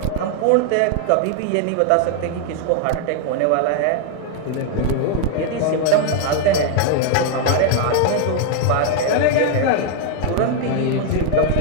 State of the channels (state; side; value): different; both; correlation 0.00